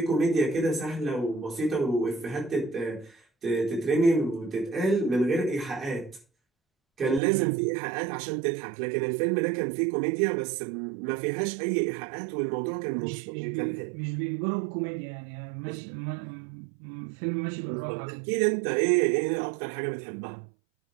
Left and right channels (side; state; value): left; drops out; at 7.2 s